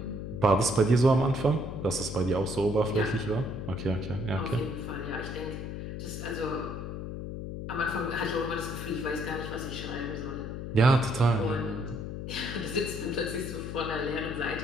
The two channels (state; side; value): noise; left; hum, 6 dB below the sound